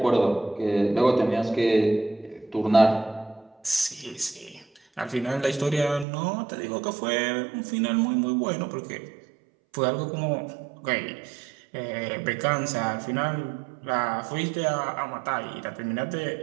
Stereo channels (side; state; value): left; drops out; at 6.1 s